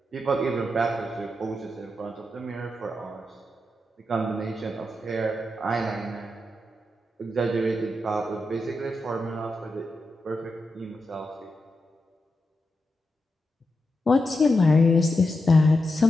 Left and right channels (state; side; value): normal; both; correlation 0.87